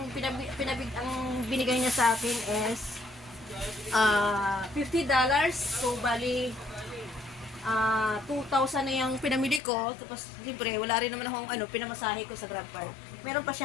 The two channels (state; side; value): drops out; right; at 9.6 s